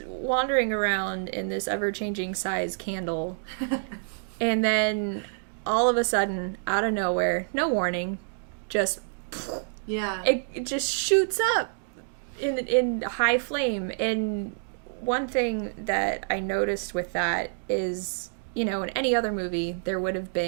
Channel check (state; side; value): silent; left; digital silence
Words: wandering around in this ever-changing size candle. And then all of a sudden, out of nowhere, no warning, just Yeah. it just shoots up in high flame. And one thing that I noticed with that is, you know, in any other movie there would have